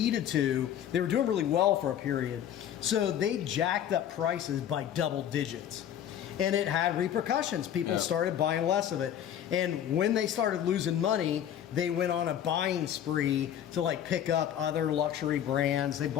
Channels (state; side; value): quieter; right; 10.1 dB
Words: to, they were doing really well for a period, so they jacked up prices by double digits. And it had repercussions. People started buying less of it. And when they started losing money, they went on a buying spree to like pick up other luxury brands. They